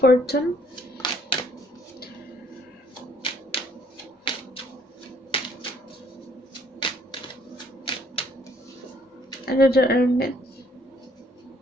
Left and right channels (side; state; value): both; normal; correlation 0.64